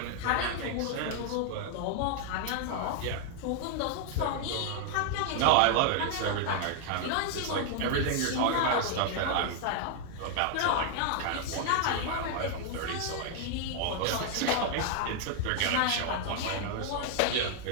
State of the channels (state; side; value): different; both; correlation 0.00